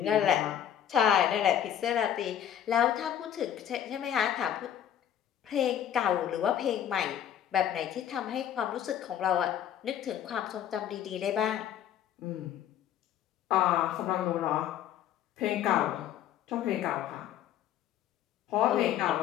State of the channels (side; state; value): right; quieter; 10.2 dB